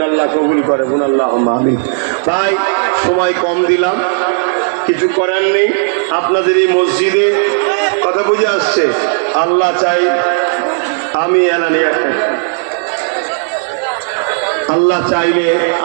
আল্লাহ কবুল করে, বোন আল্লাহ আমিন। তাই সময় কম দিলাম, কিছু করার নেই। আপনাদের এই মসজিদে কথা বুঝে আসছে, আল্লাহ চাই আমি এলানে একটা, আল্লাহ চাইলে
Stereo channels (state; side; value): silent; left; 71 dB below the other